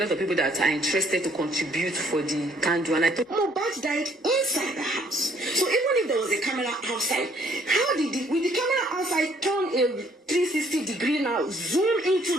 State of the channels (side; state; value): both; normal; correlation 0.64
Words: of people that are interested to contribute for the candle, and I thought Mohbad died inside the house. So even if there was a camera outside, how did with the camera outside turn a 360 degree now, zoom into